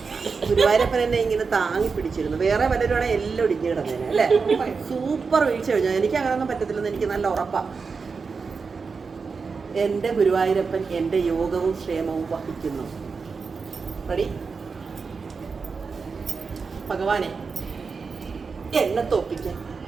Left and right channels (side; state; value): left; quieter; 5.0 dB